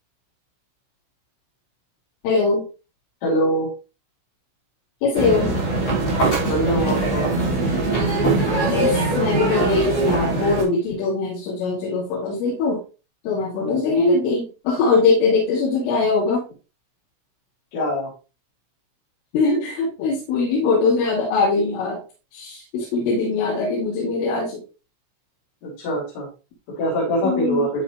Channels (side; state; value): right; late; 16 ms